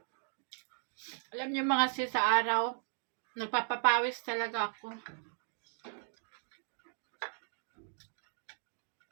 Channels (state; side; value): silent; left; digital silence